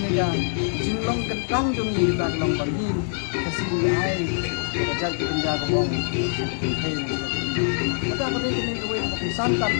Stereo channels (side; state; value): right; silent; 62 dB below the other